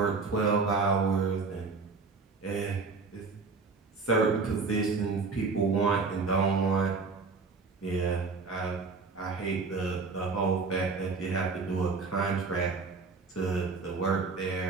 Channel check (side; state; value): left; quieter; 4.4 dB